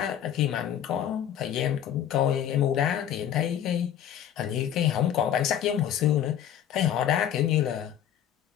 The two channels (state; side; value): quieter; right; 10.2 dB